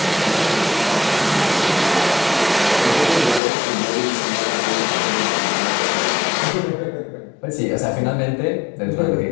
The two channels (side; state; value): right; drops out; at 3.4 s